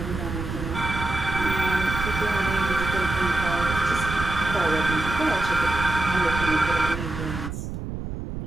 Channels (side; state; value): right; noise; rumble, 6 dB below the sound